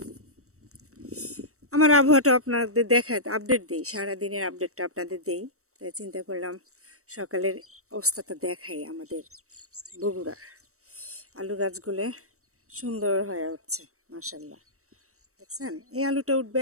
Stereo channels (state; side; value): late; left; 0.64 ms